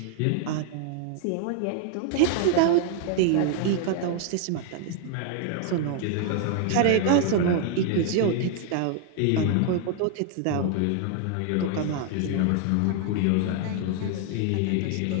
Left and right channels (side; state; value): both; different; correlation 0.00